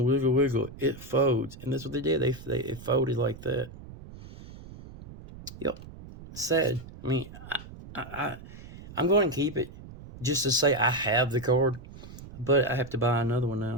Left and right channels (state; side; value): noise; right; rumble, 16 dB below the sound